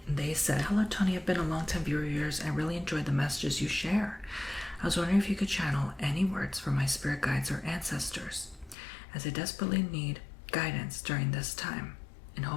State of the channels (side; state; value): right; drops out; at 8.8 s